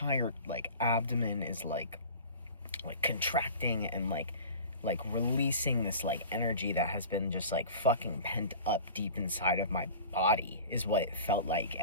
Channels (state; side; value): inverted; both; correlation -0.39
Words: like abdomen is like contracting and like releasing this like energy that has been just like fucking pent up deep inside of my body, is what it felt like.